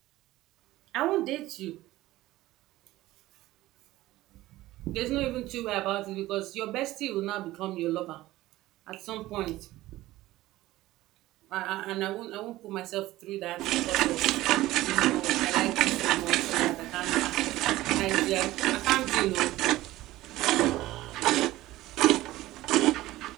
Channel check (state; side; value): quieter; left; 16.8 dB